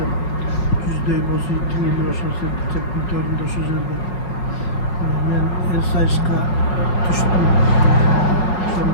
деп, жүздөй болсу тиңели ошол сертичектин төрүндө ошол жерде мен сайышка түштүм.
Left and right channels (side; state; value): right; late; 5.2 ms